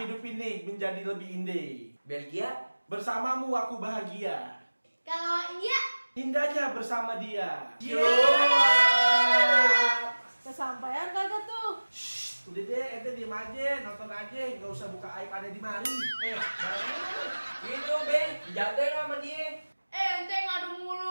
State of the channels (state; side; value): inverted; both; correlation -1.00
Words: ini menjadi lebih indah. Belgia? Bersamamu aku bahagia. Kalau India? Indahnya bersama dia. Kesampaian kagak tuh? Shh, udah deh, ente diem aja, nonton aja, nggak usah buka aib ada di mari. Barangnya Gitu be, jagain sama dia. Ente ngadu